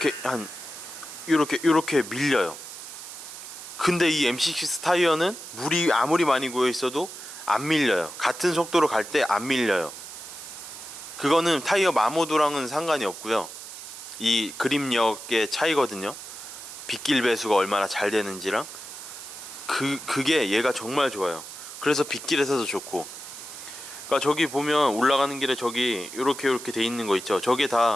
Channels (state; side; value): noise; right; hiss, 12 dB below the sound